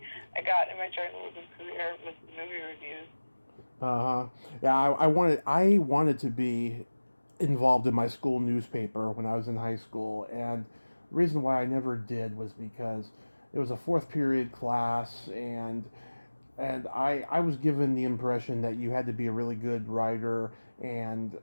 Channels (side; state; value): both; inverted; correlation -1.00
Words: I got in my journalism career with the movie reviews. Yeah, I wanted to be involved in my school newspaper when I was in high school, and the reason why I never did was because it was a fourth period class, and I was given the impression that you had to be a really good writer and